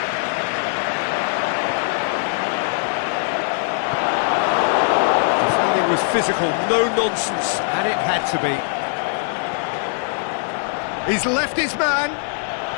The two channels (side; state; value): right; silent; digital silence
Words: Defending was physical, no nonsense, and it had to be. He's left his man.